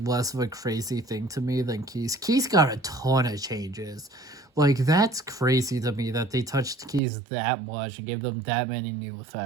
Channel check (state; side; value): drops out; left; at 7.0 s